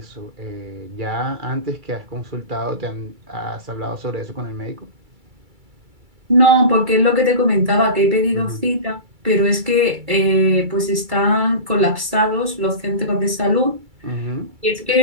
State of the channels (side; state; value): left; late; 2.3 ms